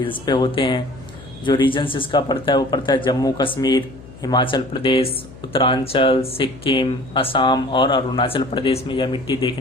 पे होते हैं। जो रीजन्स इसका पड़ता है वो पड़ता है जम्मू कश्मीर, हिमाचल प्रदेश, उत्तरांचल, सिक्किम, असम और अरुणाचल प्रदेश में यह मिट्टी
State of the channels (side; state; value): left; noise; hum, 19 dB below the sound